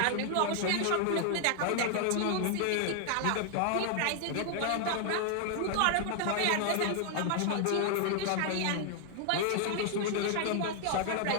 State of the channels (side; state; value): both; different; correlation 0.00